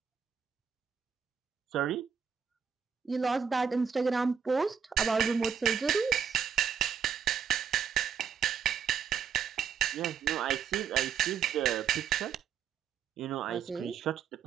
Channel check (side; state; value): left; quieter; 7.2 dB